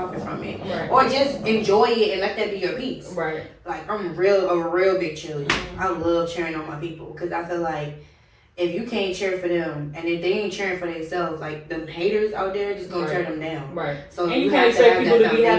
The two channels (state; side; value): identical; both; correlation 1.00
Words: from it, Right. or just enjoy it and let that be your peace. Right. Like, I'm a real big cheerleader. I love cheering on my people, because I feel like if you can't cheer for them and if they ain't cheering for themselves, like, them haters out there just gonna tear them down. Right. So And you have can't expect have people that to be happy